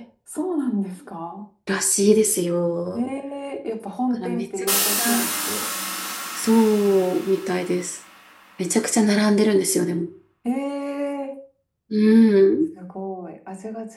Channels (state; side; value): identical; both; correlation 1.00